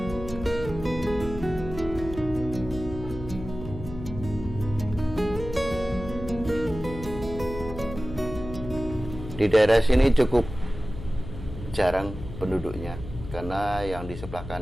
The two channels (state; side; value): noise; left; hum, 11 dB below the sound